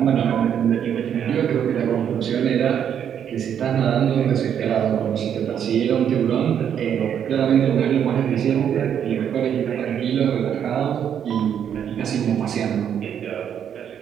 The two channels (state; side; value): quieter; left; 8.8 dB